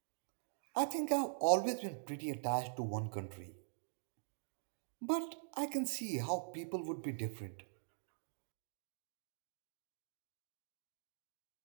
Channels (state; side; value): silent; left; digital silence